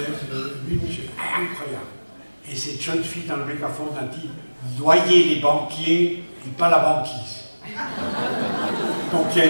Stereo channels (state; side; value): inverted; both; correlation -1.00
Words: 8000 jeunes, incroyable. Et cette jeune fille dans le mégaphone a dit « Noyez les banquiers et pas la banquise ». Donc il y a